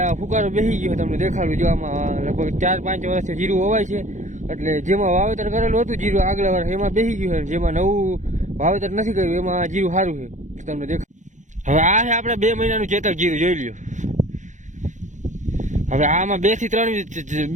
આ ફુકારો બેસી ગયો તમને દેખાડું, જો આમાં લગભગ 4-5 વર્ષથી જીરું હોવાય છે, એટલે જેમાં વાવેતર કરેલું હતું જીરું આગલા વર્ષ એમાં બેસી ગયું છે, જેમાં નવું વાવેતર નથી કર્યું એમાં જીરું સારું છે તમને દેખાય। હવે આ છે આપણે 2 મહિનાનું ચેતક જીરું જોઈ લ્યો। હવે આમાં 2 થી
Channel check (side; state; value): left; late; 0.36 ms